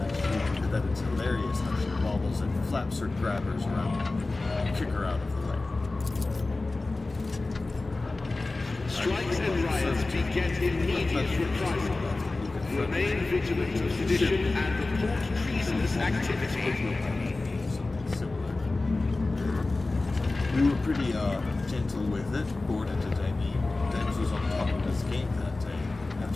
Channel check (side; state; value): right; quieter; 3.3 dB